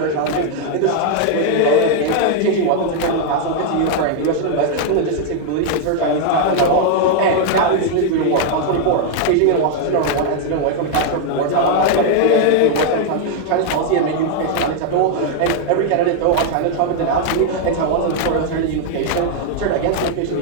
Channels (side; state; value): both; different; correlation 0.00